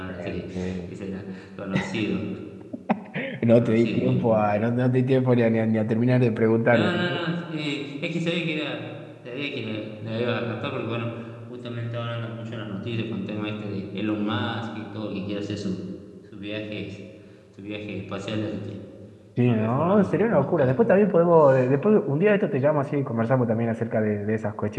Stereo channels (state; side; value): identical; both; correlation 1.00